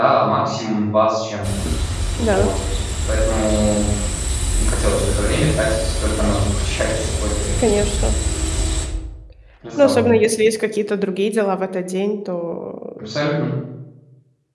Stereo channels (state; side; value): identical; both; correlation 1.00